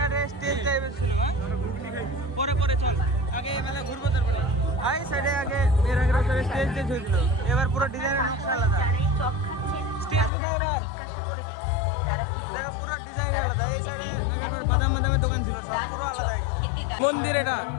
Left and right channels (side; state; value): right; drops out; at 10.3 s